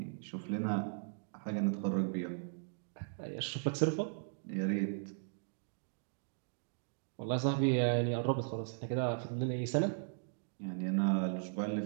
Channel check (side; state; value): left; silent; digital silence